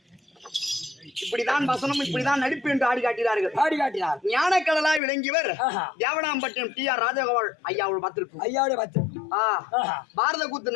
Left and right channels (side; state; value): right; drops out; at 5.0 s